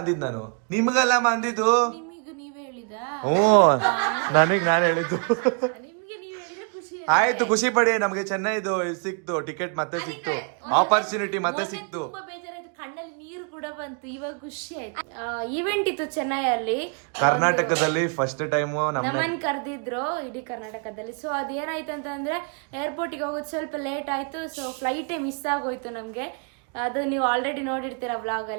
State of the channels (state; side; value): quieter; left; 39.0 dB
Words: ಅಂದಿದ್ ನಾನು, ನಿಮ್ಗಲ್ಲ ಅಂದಿದ್ದು. ನಿಮಗೆ ನೀವೇ ಹೇಳಿದ? ನನಗ್ ನಾನು ಹೇಳಿದ್ದು. ನಿಮ್ಗೆ ನೀವ್ ಹೇಳಿದ್ರೆ ಖುಷಿ ಆಯ್ತು, ಖುಷಿ ಪಡಿ. ನಮ್ಗೆ ಚೆನ್ನೈದು ಸಿಕ್ತು ಟಿಕೆಟ್, ಮತ್ತೆ ಸಿಕ್ತು ಆಪರ್ಚುನಿಟಿ, ಮತ್ತೆ ಸಿಕ್ತು. ತುಂಬಾ ಬೇಜಾರಾಯ್ತು, ಕಣ್ಣಲ್ಲಿ ನೀರು ಕೂಡ ಬಂತು. ಇವಾಗ ಖುಷಿ ಆಯ್ತು. ಈವೆಂಟ್ ಇತ್ತು ಚೆನ್ನೈಯಲ್ಲಿ, ಕರ್ನಾಟಕದಲ್ಲಿ ಫಸ್ಟ್ ಟೈಮ್ ನಮ್ಮನ್ ಕರೆದಿದ್ರು ಇಡೀ ಕರ್ನಾಟಕದಲ್ಲಿ. ಸೊ ಅದೇನಾಯ್ತು ಅಂತಂದ್ರೆ, ಏರ್ಪೋರ್ಟಿಗೆ ಹೋಗೋದು ಸ್ವಲ್ಪ ಲೇಟ್ ಆಯ್ತು. ಸೊ ಫ್ಲೈಟೇ ಮಿಸ್ ಆಗೋಯ್ತು ನಮ್ಗೆ. ಅದು ನೀವು ಆಲ್ರೆಡಿ ನೋಡಿರ್ತೀರ ವ್ಲಾಗ್